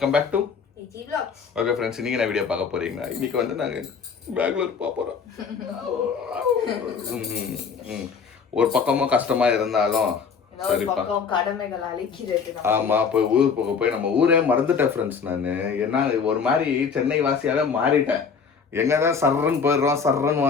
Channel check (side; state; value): right; quieter; 5.9 dB